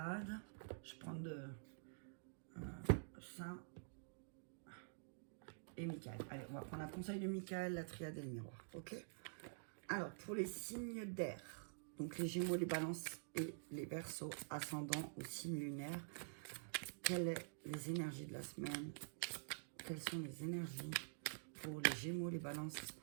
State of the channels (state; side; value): silent; left; digital silence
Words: Je prends Saint et Michael. Allez, on va prendre un conseil de Michael, la triade et le miroir. Ok? Alors, pour les signes d'air, donc les Gémeaux, les Balances et les Verseaux, ascendant au signe lunaire, quelles sont les énergies de la semaine? Quelles sont les énergies pour les Gémeaux, les Balances